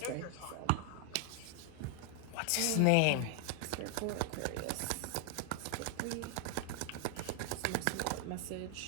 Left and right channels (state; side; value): different; both; correlation 0.00